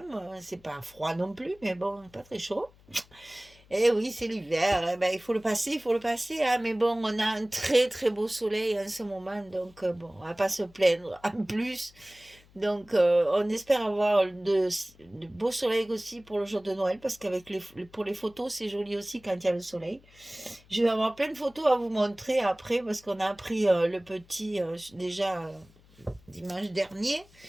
C'est pas froid non plus, mais bon, pas très chaud. Eh oui, c'est l'hiver. Eh ben, il faut le passer. Hein. Mais bon, on a un très très beau soleil en ce moment, donc bon, on va pas se plaindre. En plus, donc on espère avoir de beaux soleils aussi pour le jour de Noël, parce qu'avec pour les photos, c'est joli aussi quand il y a le soleil. Je vais avoir plein de photos à vous montrer après, parce qu'on a appris le petit déjà dimanche dernier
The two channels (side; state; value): left; noise; hum, 27 dB below the sound